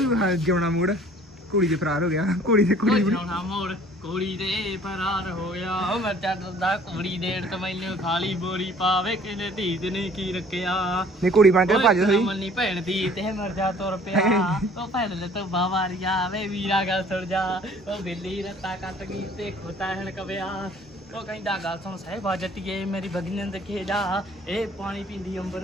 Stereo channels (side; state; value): both; normal; correlation 0.54